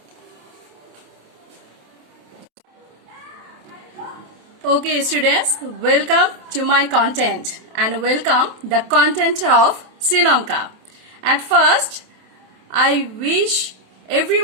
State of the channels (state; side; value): late; left; 27 ms